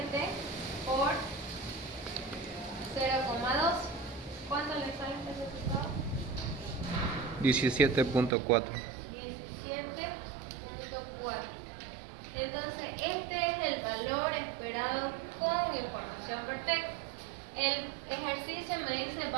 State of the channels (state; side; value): drops out; left; at 8.3 s